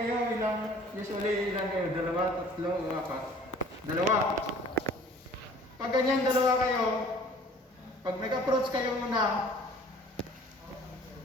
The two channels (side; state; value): both; normal; correlation 0.51